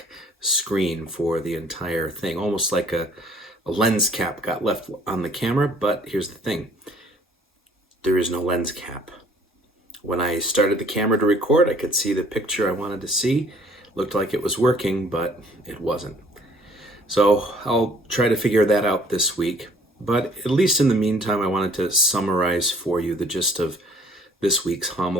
screen for the entire thing, almost like a lens cap got left on the camera. But here's the thing, there is no lens cap. When I started the camera to record, I could see the picture I wanted to see. Looked like it was working, but it wasn't. So I'll try to figure that out this week. But at least in the meantime, I wanted to summarize for you the gist of this week's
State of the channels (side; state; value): both; normal; correlation 0.58